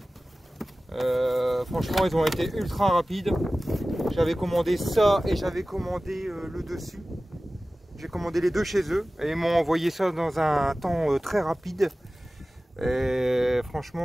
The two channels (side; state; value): both; normal; correlation 0.97